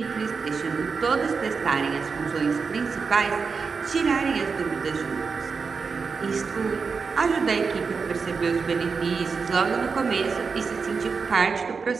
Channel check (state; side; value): quieter; left; 5.2 dB